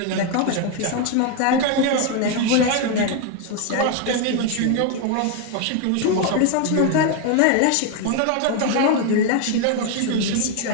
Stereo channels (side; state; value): both; different; correlation 0.01